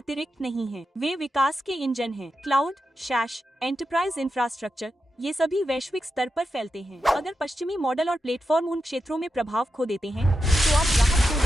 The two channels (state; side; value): normal; both; correlation 0.88